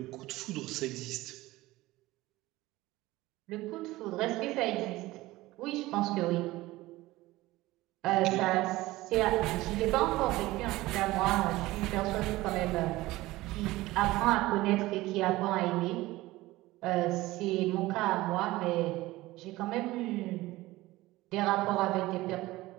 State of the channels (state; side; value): quieter; left; 18.5 dB